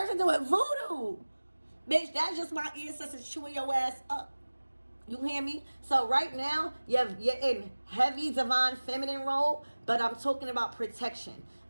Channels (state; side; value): inverted; both; correlation -1.00